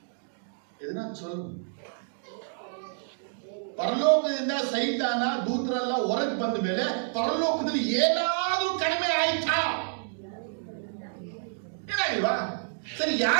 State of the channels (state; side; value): silent; left; 59 dB below the other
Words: ಇದನ್ನ ಚೊಲ್ ಪರಲೋಕದಿಂದ ಸೈತಾನ ದೂತರೆಲ್ಲ ಹೊರಗೆ ಬಂದ ಮೇಲೆ ಪರಲೋಕದಲ್ಲಿ ಏನಾದ್ರೂ ಕಡಿಮೆ ಆಯ್ತಾ? ಏನಾಗಿಲ್ವಾ? ಸರಿ,